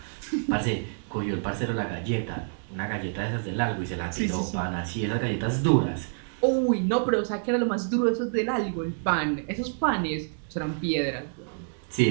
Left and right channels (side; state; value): left; silent; digital silence